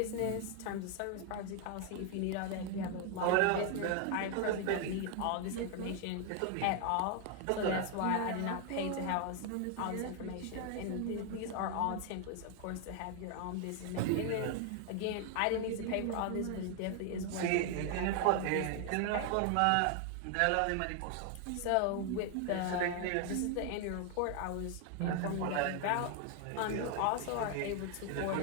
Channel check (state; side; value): different; both; correlation 0.00